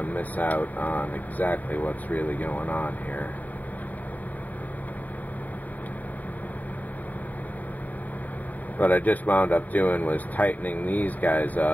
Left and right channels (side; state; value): right; late; 0.078 ms